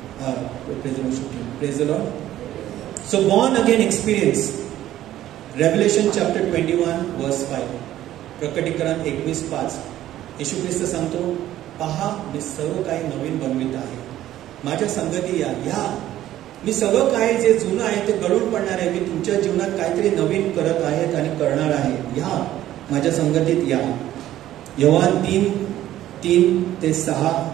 praise the Lord. So born again experience. Revelation chapter 21 verse 5, प्रकटीकरण 21:5. येशू ख्रिस्त सांगतो, पहा मी सर्व काही नवीन बनवित आहे, माझ्या संगती या. मी सगळं काय जे जुनं आहे ते गळून पडणार आहे, मी तुमच्या जीवनात काहीतरी नवीन करत आहेत आणि करणार आहे, या माझ्या संगतीत या. योहान 3:3-6,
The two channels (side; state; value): left; quieter; 13.3 dB